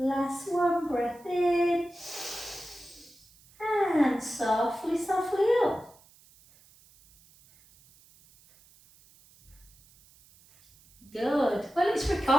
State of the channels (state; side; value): noise; right; hiss, 28 dB below the sound